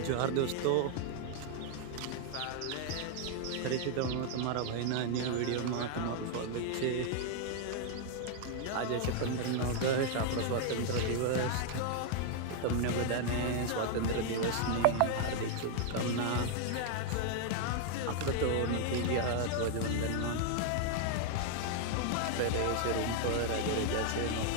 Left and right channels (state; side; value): different; both; correlation 0.00